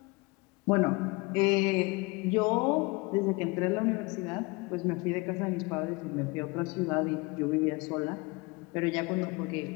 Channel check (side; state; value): right; quieter; 26.1 dB